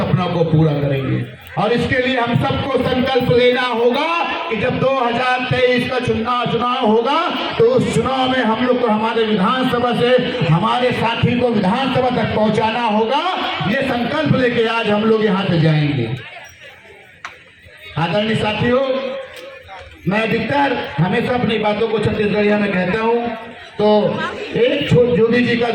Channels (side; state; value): both; identical; correlation 1.00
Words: को पूरा करेंगे। और इसके लिए हम सबको संकल्प लेना होगा कि जब 2023 का चुनाव होगा तो उस चुनाव में हम लोग को हमारे विधानसभा से हमारे साथी को विधानसभा तक पहुंचाना होगा। ये संकल्प लेके आज हम लोग यहाँ से जाएंगे। आदरणीय साथियों, मैं अधिकतर हमेशा अपनी बातों को छत्तीसगढ़िया में कहता हूँ, तो एक जोगी जी का